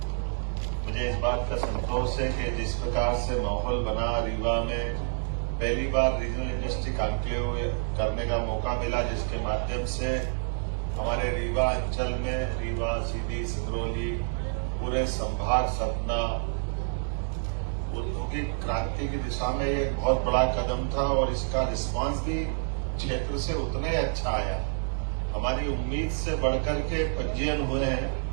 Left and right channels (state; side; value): silent; left; digital silence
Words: मुझे इस बात का संतोष है कि जिस प्रकार से माहौल बना रीवा में, पहली बार रीजनल इंडस्ट्री कॉन्क्लेव करने का मौका मिला, जिसके माध्यम से हमारे रीवा अंचल में, रीवा, सीधी, सिंगरौली, पूरे संभाग सतना औद्योगिक क्रांति की दिशा में ये एक बहुत बड़ा कदम था और इसका रिस्पांस भी क्षेत्र से उतना ही अच्छा आया। हमारी उम्मीद से बढ़कर के पंजीयन हुए हैं